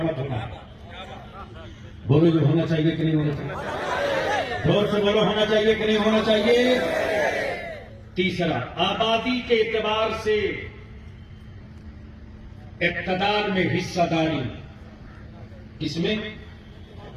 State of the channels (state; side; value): identical; both; correlation 1.00